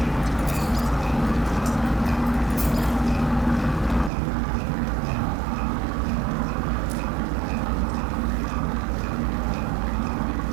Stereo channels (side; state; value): left; drops out; at 4.1 s